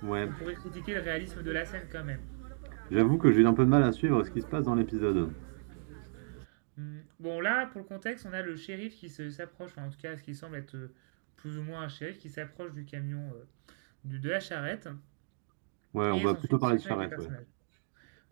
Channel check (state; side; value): silent; left; digital silence